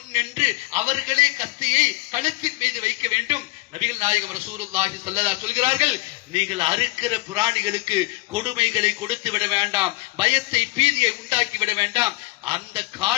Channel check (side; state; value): right; quieter; 22.1 dB